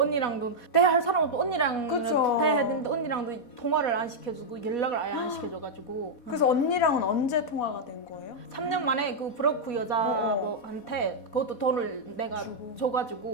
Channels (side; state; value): right; late; 4.2 ms